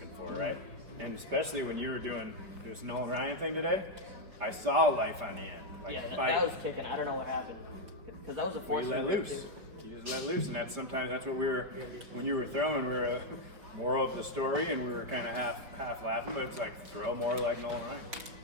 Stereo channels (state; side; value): late; left; 5.2 ms